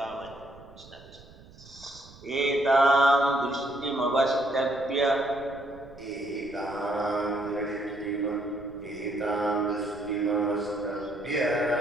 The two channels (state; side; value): noise; right; rumble, 22 dB below the sound